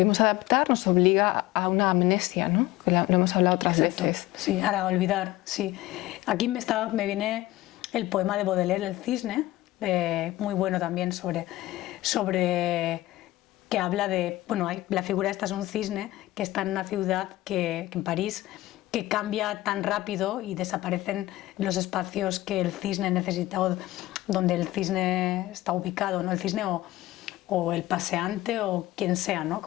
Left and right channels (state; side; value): quieter; right; 17.0 dB